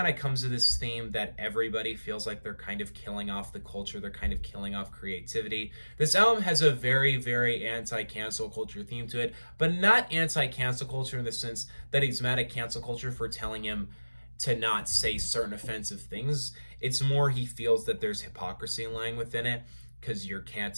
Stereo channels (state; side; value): inverted; both; correlation -1.00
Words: of comes to this theme that everybody feels like they're kind of killing off the culture. They're kind of killing off creativity. This album has a very, very anti-cancel culture theme to it, but not anti-cancel culture in the sense that he's mad at cancel culture for telling him to not say certain offensive things. It's more he feels that there's hypocrisy lying within it because you're